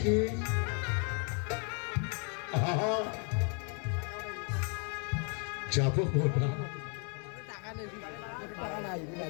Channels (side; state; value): right; quieter; 38.1 dB